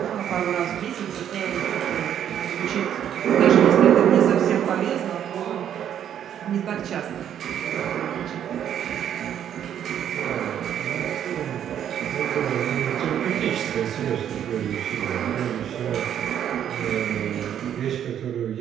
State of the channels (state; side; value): quieter; left; 9.8 dB